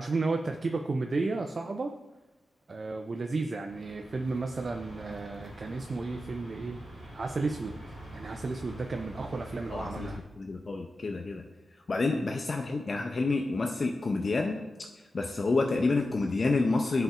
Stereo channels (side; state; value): both; normal; correlation 0.90